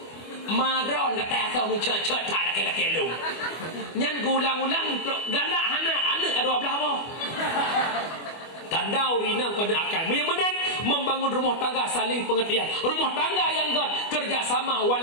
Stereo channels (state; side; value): late; right; 25 ms